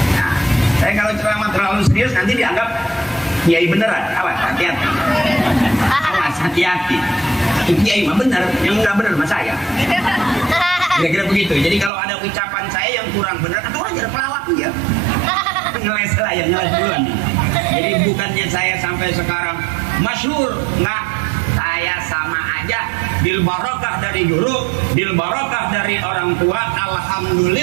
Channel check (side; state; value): left; drops out; at 11.9 s